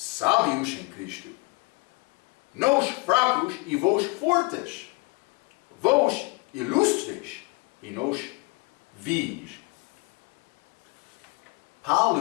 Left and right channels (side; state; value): right; quieter; 27.4 dB